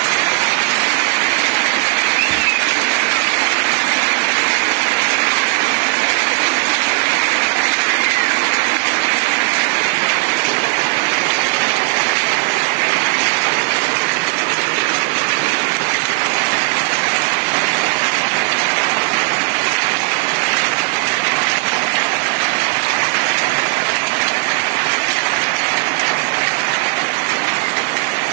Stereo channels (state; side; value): quieter; left; 37.0 dB